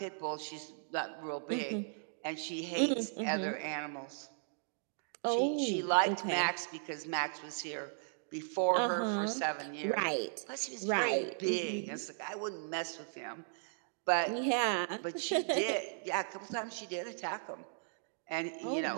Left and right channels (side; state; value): left; silent; digital silence